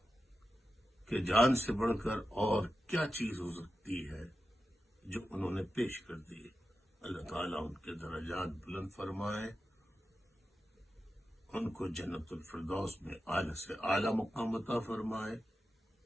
کہ جان سے بڑھ کر اور کیا چیز ہو سکتی ہے جو انہوں نے پیش کر دی۔ اللہ تعالیٰ ان کے درجات بلند فرمائے، ان کو جنت الفردوس میں اعلی سے اعلی مقام عطا فرمائے،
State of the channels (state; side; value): normal; both; correlation 0.91